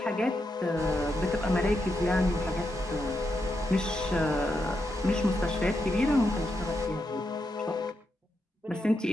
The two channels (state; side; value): normal; both; correlation 0.84